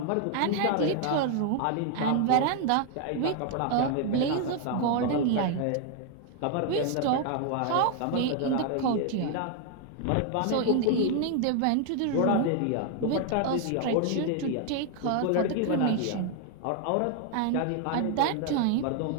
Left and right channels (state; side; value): different; both; correlation 0.00